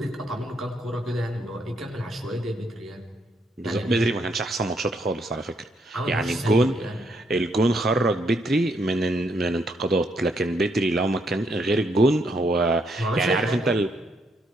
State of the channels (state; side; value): normal; both; correlation 0.74